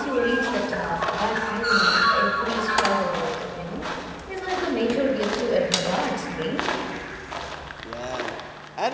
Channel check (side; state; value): both; identical; correlation 1.00